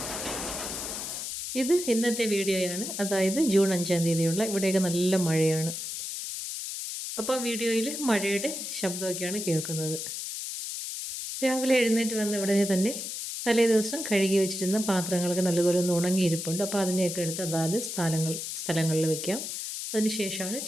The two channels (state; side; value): noise; left; hiss, 6 dB below the sound